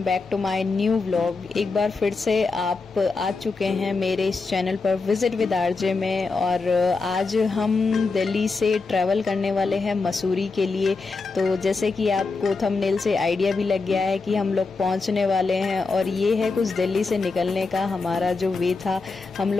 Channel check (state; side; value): quieter; right; 4.1 dB